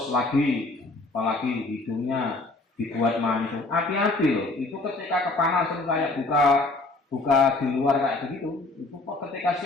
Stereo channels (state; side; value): quieter; right; 3.2 dB